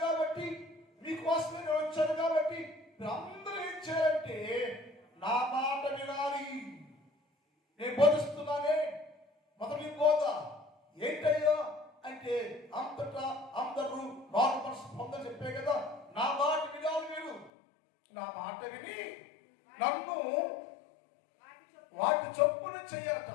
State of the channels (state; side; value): drops out; right; at 17.5 s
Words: కాబట్టి, మీకోసమే నేను వచ్చాను కాబట్టి మీరు అందరూ ఏం చేయాలంటే నా మాట వినాలి. నేను బోధిస్తున్నానే మొదటి బోధ ఏంటయ్యా అంటే అంతటా అందరూ మారు మనసు పొందని చెప్పే కదా. నా మాట వినాలి. మీరు నా మాట విని నన్ను వాటి చొప్పున చెయ్యాలట.